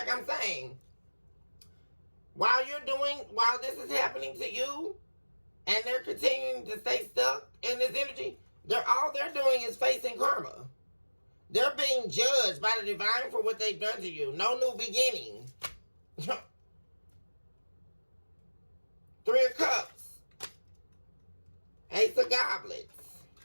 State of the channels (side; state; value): both; inverted; correlation -1.00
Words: I'm saying, while this is happening to you, and they're continuing to stay stuck in this energy, all they're doing is facing karma. They're being judged by the divine for what they've done to you. No new beginning. 3 of Cups. Ace of Goblets.